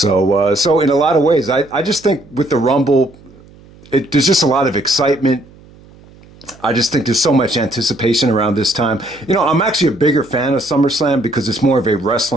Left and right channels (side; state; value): right; noise; hum, 24 dB below the sound